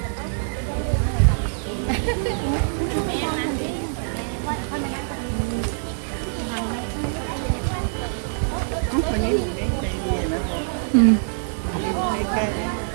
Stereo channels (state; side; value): silent; left; digital silence